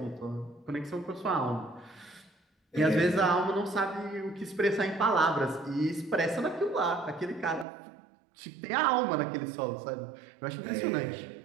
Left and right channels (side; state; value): left; drops out; at 7.7 s